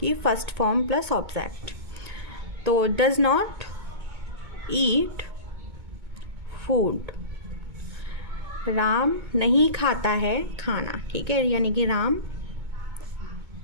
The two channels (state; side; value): late; left; 2.2 ms